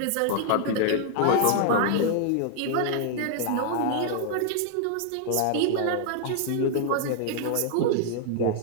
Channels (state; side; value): different; both; correlation 0.00